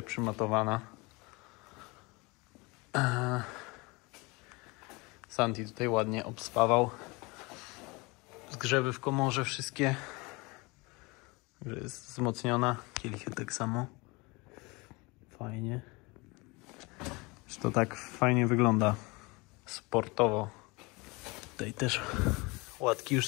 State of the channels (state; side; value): quieter; right; 25.8 dB